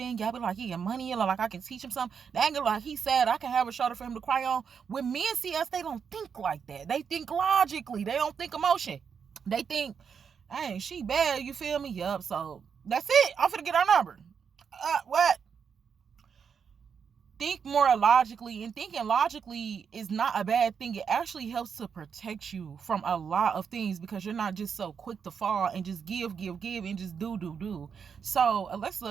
Yep, like he get money. Like I can teach him something. Dang it, like he said, I can have a shoulder for him to cry on. When men see us, they don't think like that. They think logically. They don't think emotion. They think, hey, she bad. You feel me? Yup. So that's it. I'm finna get our number. What? Think more logically, and thinking logically is not a bad thing. It actually helps to protect you from a lot of things because you're not just so quick to fall and just give and just do. So Alexus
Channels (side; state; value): left; quieter; 6.7 dB